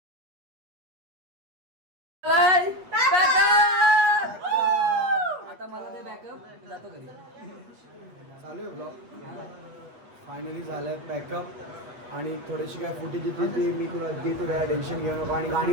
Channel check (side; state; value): left; late; 8.2 ms